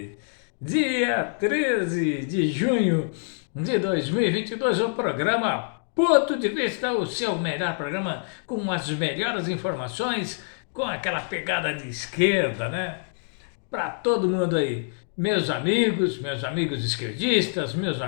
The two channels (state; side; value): silent; right; digital silence